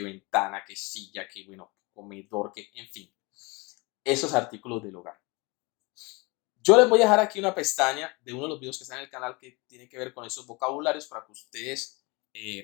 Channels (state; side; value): quieter; right; 26.6 dB